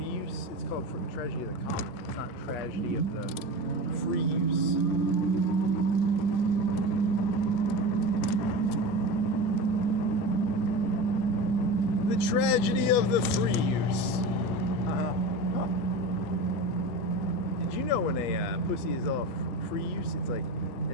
use? It's called the tragedy of the common. It's not tragedy of the free use. The tragedy of the free use. Did you know when a pussy is all free use, it's like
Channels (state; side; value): late; right; 8.4 ms